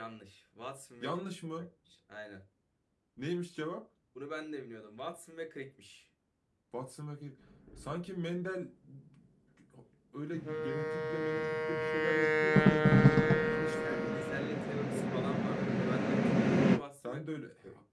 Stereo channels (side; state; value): both; identical; correlation 1.00